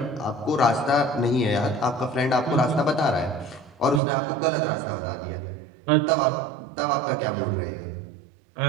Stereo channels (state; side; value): drops out; left; at 4.0 s